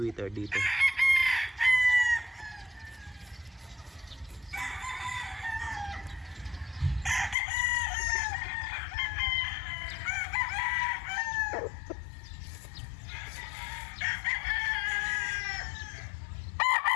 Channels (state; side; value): drops out; right; at 7.4 s